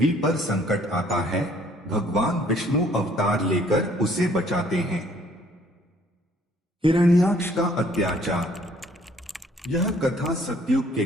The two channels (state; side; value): normal; both; correlation 0.60